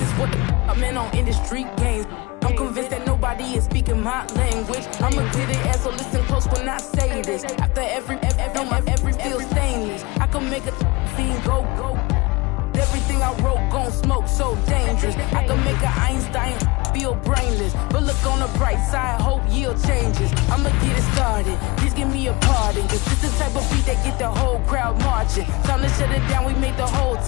what the I'm in on industry games? I'm convinced that nobody is speaking my language. I'ma get it as so listen close when I say this. After every feel stainless. I can make a scene go. Everything I wrote gon' smoke, so dangerous. I can make a Einstein feel brainless. But look on the bright side, hope yield changes. I'ma get it started, please give me a pardon. Cause this is the type of beat that get the whole crowd marching. Time to shut it down, we made the whole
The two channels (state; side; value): quieter; right; 24.0 dB